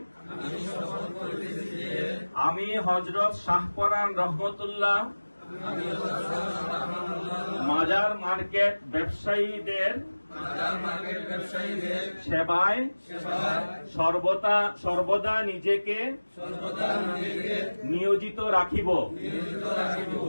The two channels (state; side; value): inverted; both; correlation -1.00